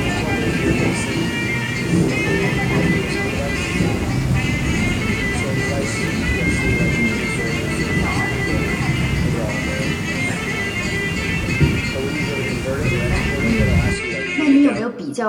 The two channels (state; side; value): identical; both; correlation 1.00